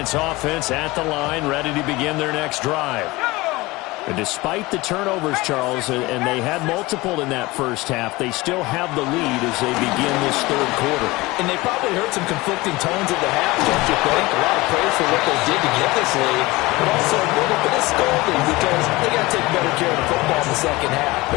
offense at the line, ready to begin their next drive. And despite the turnovers, Charles, and they had multiple in that first half, they still have the lead as they begin this third quarter. And they probably heard some conflicting tones at the half, don't you think? A lot of praise for what they did to get this lead, but also a little bit of scolding because they got to take better care of the football in the second half.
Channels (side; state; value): right; quieter; 21.4 dB